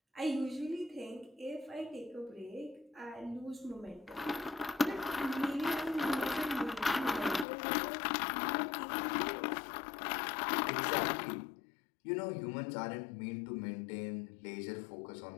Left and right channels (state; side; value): drops out; right; at 7.5 s